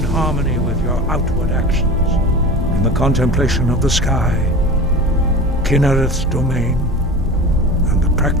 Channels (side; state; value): both; normal; correlation 0.33